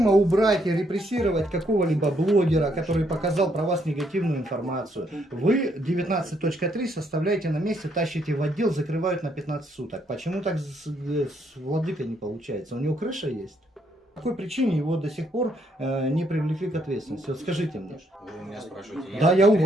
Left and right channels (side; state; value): both; normal; correlation 0.72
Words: убрать и репрессировать какого-либо блогера, который показал про вас негативную информацию, вы 19.3 составляете на месте, тащите в отдел, закрывают на 15 суток. Почему так с владыкой не получается? У него крыша есть? По какой причине его до сих пор не привлекли к ответственности? Вот скажите мне. Вы у меня спрашиваете. Да, я у